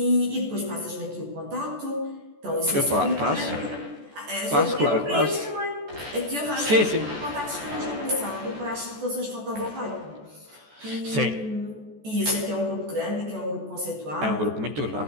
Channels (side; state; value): left; late; 14 ms